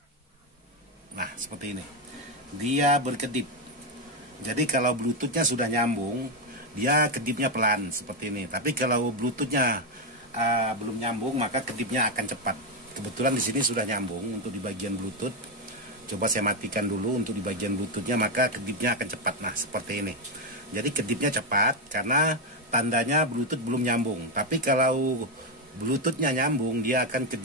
Nah, seperti ini. Dia berkedip. Jadi kalau Bluetoothnya sudah nyambung, dia kedipnya pelan seperti ini. Tapi kalau Bluetoothnya belum nyambung, maka kedipnya akan cepat. Kebetulan di sini sudah nyambung untuk di bagian Bluetooth. Coba saya matikan dulu untuk di bagian Bluetoothnya, maka kedipnya akan cepat. Nah, seperti ini. Jadi kedipnya cepat karena tandanya Bluetooth belum nyambung. Tapi kalau Bluetoothnya nyambung, dia akan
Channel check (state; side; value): normal; both; correlation 0.06